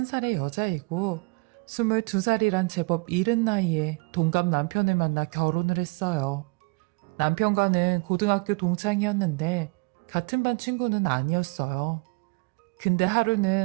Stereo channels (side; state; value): left; quieter; 30.4 dB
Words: 여자이고 22살이란 제법 이른 나이에 동갑 남편을 만나 결혼을 했어요. 남편과는 고등학교 동창이었는데 같은 반 친구는 아니었어요. 근데